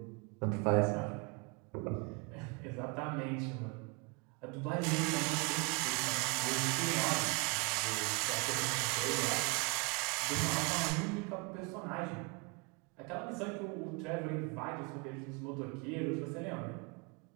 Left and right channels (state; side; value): quieter; left; 30.5 dB